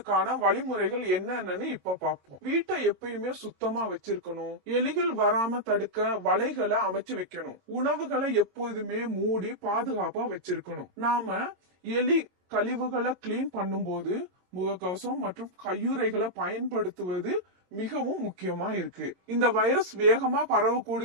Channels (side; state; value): left; late; 22 ms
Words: வழிமுறைகள் என்னன்னு இப்ப பாப்போம். வீட்டை எப்பயுமே சுத்தமா வச்சிருக்கணும். எலிகள் வராம தடுக்க வலைகளை அமைச்சு வைக்கணும். உணவுகளை எப்போதுமே மூடி பாதுகாப்பா வச்சிருக்கணும். நாம எலி கழிவுகளை கிளீன் பண்ணும்போது முகக்கவசம் மற்றும் கையுறைகளை பயன்படுத்துவது மிகவும் முக்கியமா இருக்கு. இந்த வைரஸ் வேகமா